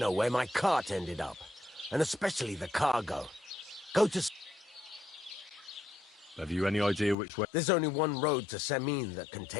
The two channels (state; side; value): drops out; right; at 7.2 s